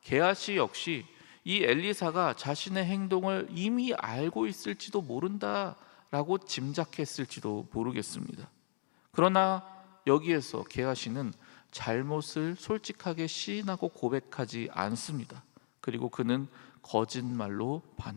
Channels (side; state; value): right; silent; digital silence